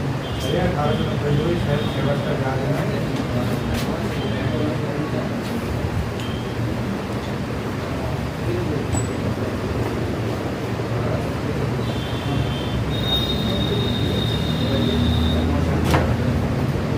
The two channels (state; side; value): identical; both; correlation 1.00